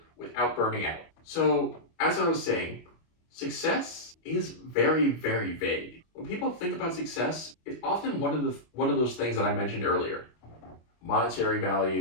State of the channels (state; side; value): late; right; 25 ms